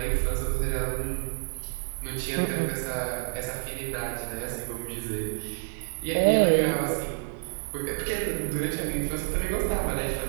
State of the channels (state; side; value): silent; left; 57 dB below the other